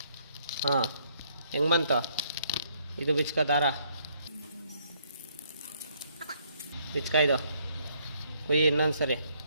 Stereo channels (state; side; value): inverted; both; correlation -0.68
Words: ಹಾಂ ಹೆಂಗೆ ಬಂತು ಇದು ಬಿಚ್ಕೋ ದಾರ ಬಿಚ್ಕ ಇದು ಕುಯ್ಯಿ ಇನ್ನೊಂದು ಸರಿ.